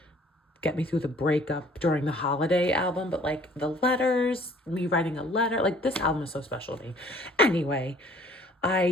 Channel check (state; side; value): normal; both; correlation 0.55